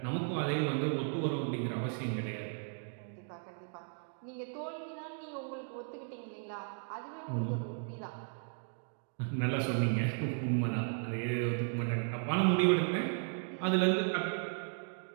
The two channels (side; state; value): left; silent; 54 dB below the other